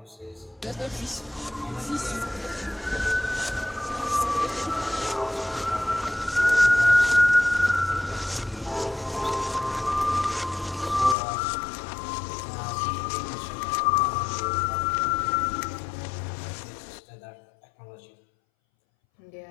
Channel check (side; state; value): right; drops out; at 11.2 s